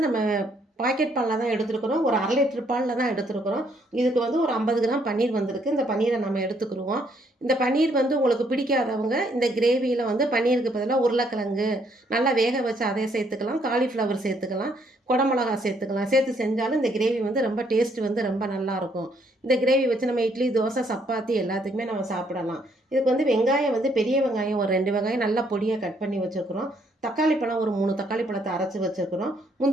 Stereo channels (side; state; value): both; normal; correlation 0.69